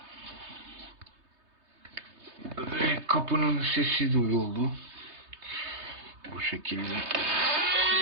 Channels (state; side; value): late; left; 3.2 ms